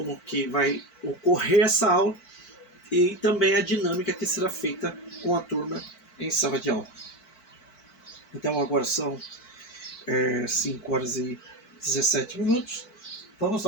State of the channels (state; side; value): late; right; 4.5 ms